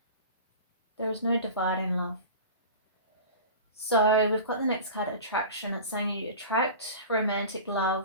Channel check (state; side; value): inverted; both; correlation -0.35